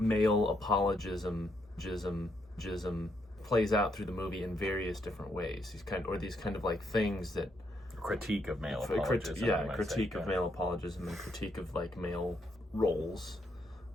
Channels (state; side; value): normal; both; correlation 0.76